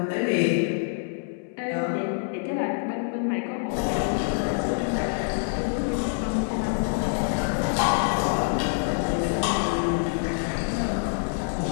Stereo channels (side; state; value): right; silent; 61 dB below the other